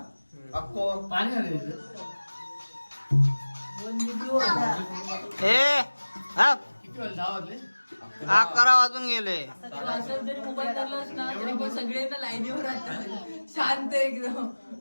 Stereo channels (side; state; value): both; inverted; correlation -1.00